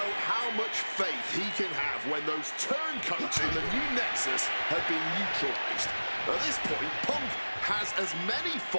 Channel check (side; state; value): both; inverted; correlation -1.00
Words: how much faith he can have when those turncoats in the new Nexus have been neutralized. At this point, Punk has as many